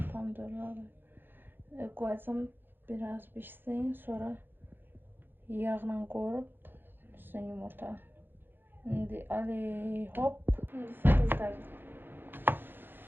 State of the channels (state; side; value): late; left; 0.099 ms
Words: Pomidorları qoyacağım biraz pişsin. Sonra yağla qoyup üstüne yumurta. İndi ali hop. İndi sizler.